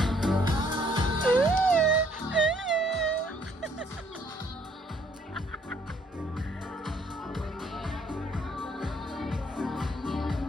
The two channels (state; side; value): normal; both; correlation 0.65